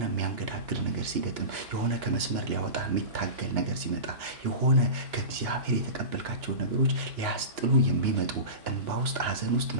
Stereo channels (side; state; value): left; late; 2.9 ms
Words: የሚያንገዳግድ ነገር ሲገጥም፣ የሆነ ከመስመር ሊያወጣ የሚታገል ነገር ሲመጣ፣ የሆነ ከእግዚአብሔር የተቀበልካቸው ነገሮች ሊያስጥሉ የሚመጡ፣ እንባ ውስጥ፣ ሐዘን ውስጥ፣